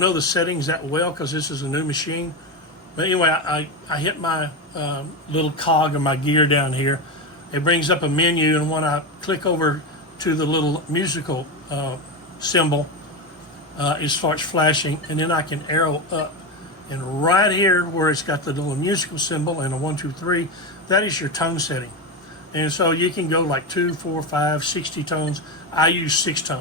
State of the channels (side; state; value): both; normal; correlation 0.16